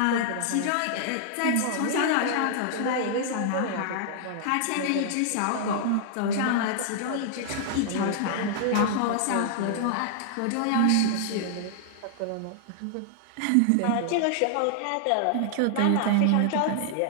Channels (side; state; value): both; different; correlation -0.01